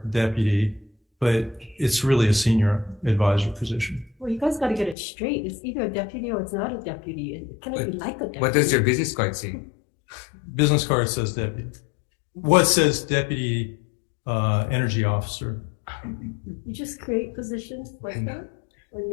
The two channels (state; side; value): drops out; right; at 5.0 s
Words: deputy, but it's really a senior advisor position. Well, you guys got to get it straight. It's either a deputy or it's not a deputy. It cannot be like a deputy. What does your business card say? Business card says deputy. What says deputy energy officer? You just create positions like that? or